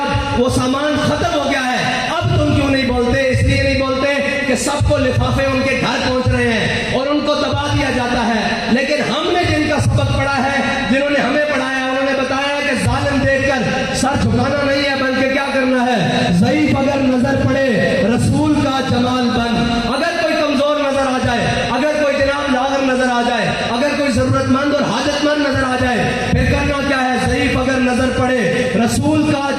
وہ سامان ختم ہو گیا ہے، اب تم کیوں نہیں بولتے؟ اس لیے نہیں بولتے کہ سب کو لفافے ان کے گھر پہنچ رہے ہیں اور ان کو دبا دیا جاتا ہے، لیکن ہم نے جن کا سبق پڑھا ہے، جنہوں نے ہمیں پڑھایا، انہوں نے بتایا کہ ظالم دیکھ کر سر جھکانا نہیں ہے بلکہ کیا کرنا ہے، ضعیف اگر نظر پڑے رسول کا جمال بن، اگر کوئی کمزور نظر آ جائے، اگر کوئی جناب لاغر نظر آ جائے، اگر کوئی ضرورت مند اور حاجت مند نظر آ جائے، پھر کرنا کیا ہے، ضعیف اگر نظر پڑے رسول کا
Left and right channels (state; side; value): identical; both; correlation 1.00